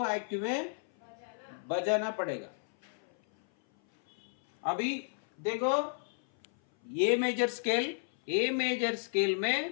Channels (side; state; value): right; silent; 56 dB below the other